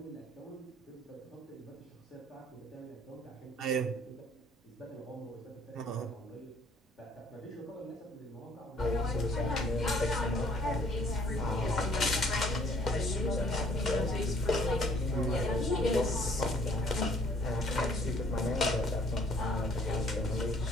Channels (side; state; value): both; normal; correlation 0.60